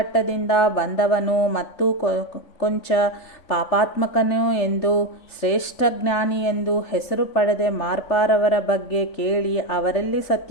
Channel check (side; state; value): right; late; 3.5 ms